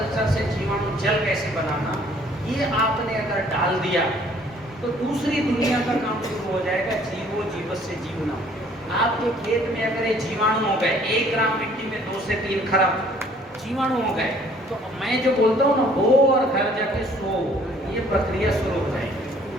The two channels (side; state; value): both; normal; correlation 0.58